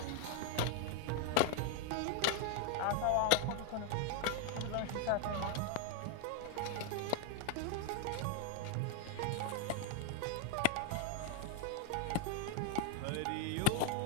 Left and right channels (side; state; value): both; different; correlation 0.00